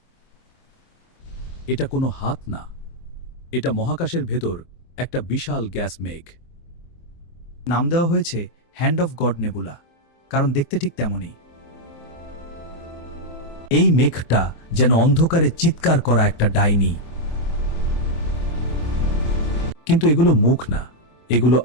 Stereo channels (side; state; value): right; late; 24 ms